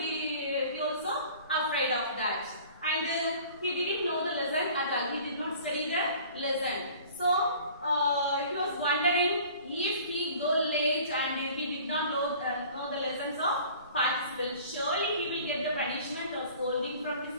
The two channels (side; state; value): both; inverted; correlation -0.47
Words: he also afraid of that. And he didn't know the lesson at all. He did not study the lesson. So he was wondering if he go late and if he did not know the lessons of participles, surely he will get the punishment or scolding from his